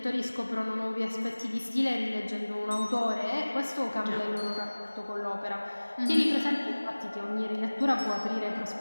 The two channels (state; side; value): inverted; both; correlation -1.00